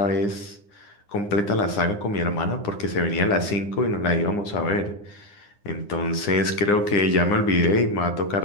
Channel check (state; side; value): late; right; 9.8 ms